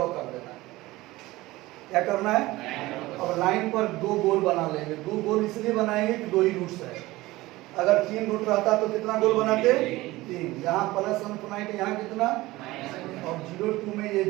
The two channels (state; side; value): quieter; left; 19.0 dB